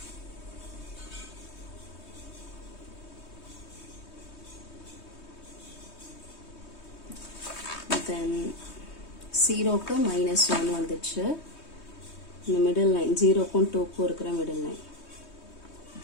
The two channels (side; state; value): right; late; 3.2 ms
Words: Then 0க்கு -1 வந்துச்சு. இந்த மிடில் லைன் 0க்கும் 2க்கும் இருக்கிற மிடில் லைன்.